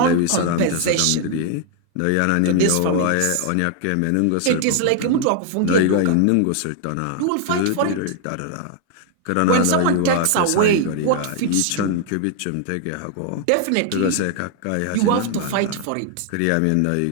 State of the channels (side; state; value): both; different; correlation 0.00